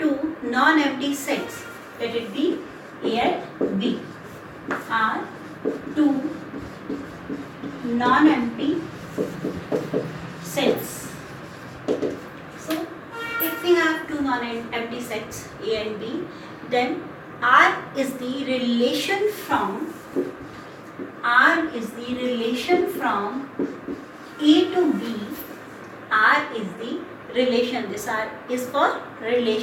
non-empty sets, let it be A and B, are two non-empty sets. So, if we have two non-empty sets A and B, then R is the relation from A to B. R is the relation. This R is for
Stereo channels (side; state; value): both; identical; correlation 1.00